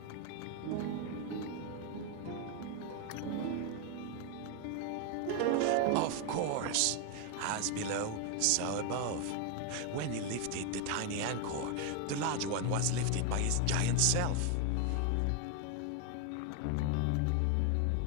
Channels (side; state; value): both; different; correlation 0.01